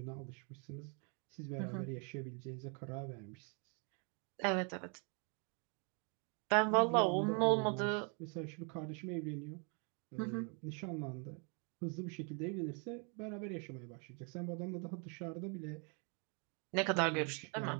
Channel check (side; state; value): left; quieter; 37.3 dB